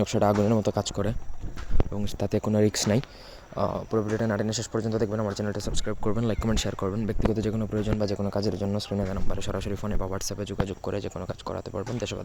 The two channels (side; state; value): both; identical; correlation 1.00